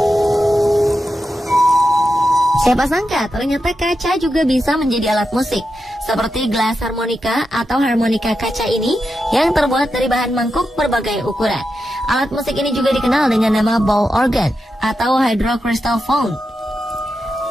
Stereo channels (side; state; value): both; normal; correlation 0.88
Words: Siapa sangka ternyata kaca juga bisa menjadi alat musik, seperti gelas harmonika atau harmonika kaca ini yang terbuat dari bahan mangkuk berbagai ukuran. Alat musik ini juga dikenal dengan nama ball organ atau hydrocrystal phone.